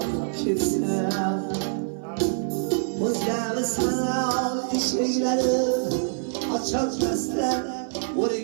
kesin Özgemi sanal şeyleri açılmazlar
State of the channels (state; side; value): silent; left; 57 dB below the other